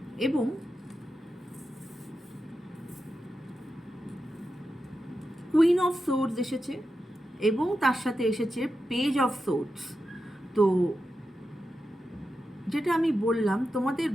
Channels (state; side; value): normal; both; correlation 0.89